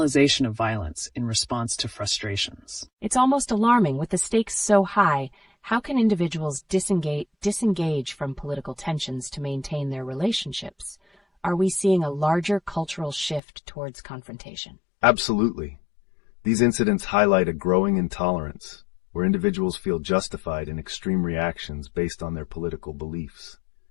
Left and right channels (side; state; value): right; drops out; at 13.4 s